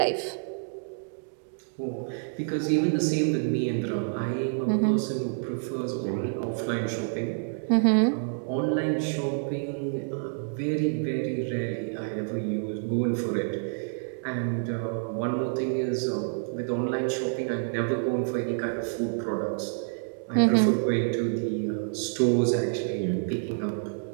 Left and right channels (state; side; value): silent; left; digital silence